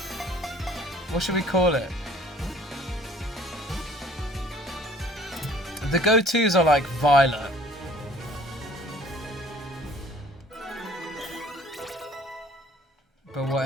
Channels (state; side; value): normal; both; correlation 0.55